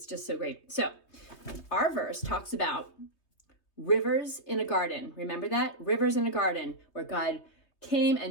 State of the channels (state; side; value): late; right; 3.2 ms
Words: just so great. So, our verse talks about rivers in a garden. Remember that? Rivers in a garden where God came